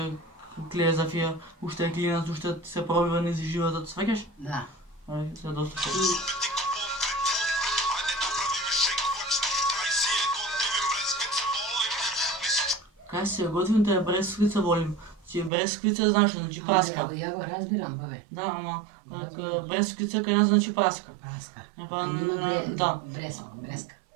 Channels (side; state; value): left; drops out; at 15.5 s